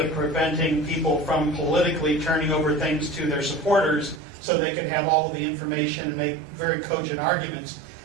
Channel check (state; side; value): drops out; left; at 4.2 s